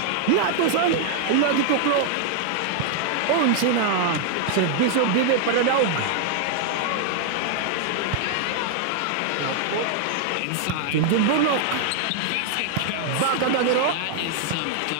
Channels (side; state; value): both; different; correlation 0.00